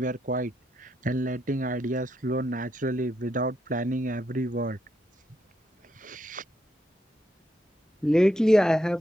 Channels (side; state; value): both; normal; correlation 0.79